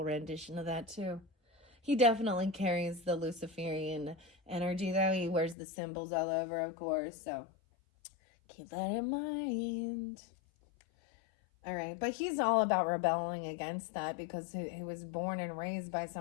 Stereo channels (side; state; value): right; drops out; at 5.6 s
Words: rendition of that too. He definitely carries the Luciferian energy, though. He wears the symbols all over, of course, so keep that in mind. All right, but he's all about rebelling against that because he was born and raised by